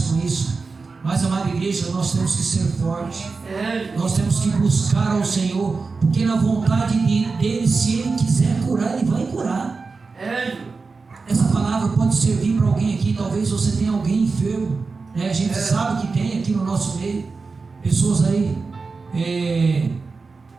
com isso. Mas, amada igreja, nós temos que ser fortes. Nós temos que buscar ao Senhor, porque na vontade dele, se Ele quiser curar, Ele vai curar. Essa palavra pode servir para alguém aqui. Talvez você tenha alguém enfermo, né? A gente sabe que tem aqui no nosso meio pessoas aí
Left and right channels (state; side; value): quieter; left; 4.3 dB